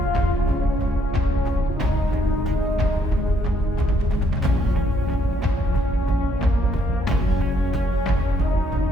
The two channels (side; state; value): both; normal; correlation 0.70